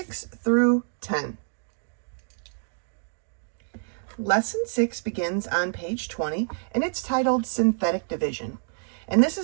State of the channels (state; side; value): silent; left; digital silence